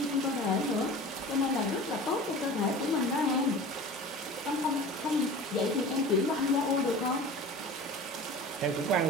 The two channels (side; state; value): both; normal; correlation 0.38